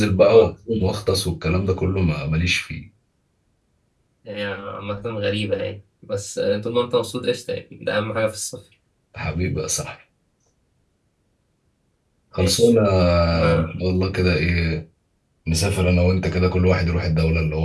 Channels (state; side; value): identical; both; correlation 1.00